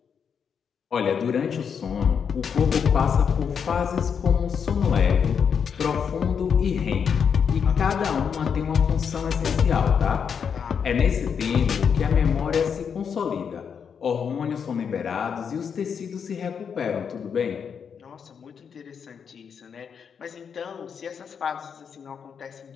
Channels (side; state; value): right; quieter; 6.9 dB